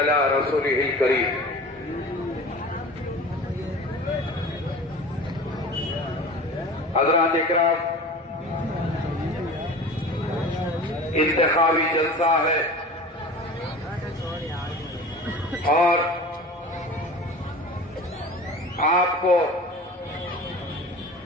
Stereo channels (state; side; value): normal; both; correlation 0.37